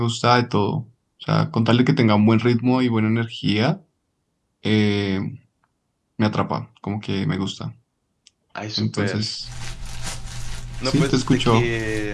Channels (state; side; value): identical; both; correlation 1.00